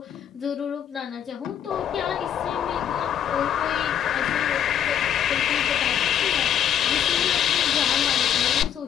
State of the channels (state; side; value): quieter; right; 9.5 dB